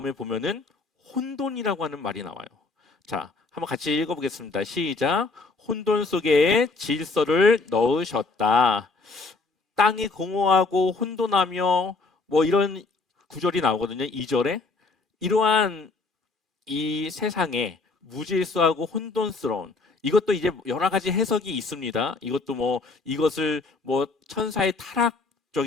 보면은 혼돈이라고 하는 말이 나와요. 자, 한번 같이 읽어보겠습니다. 시작. 혼돈 속에 질서를 넣으셨다. 땅이 공허하고 혼돈하며 뭐 이런 구절이 나오거든요. 2절에. 이러한 이 세상에 무질서하고 혼돈스러운, 이것도 이제 여러 가지 해석이 있습니다. 이것도 뭐 이것을 뭐 천사의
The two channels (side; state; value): right; quieter; 3.8 dB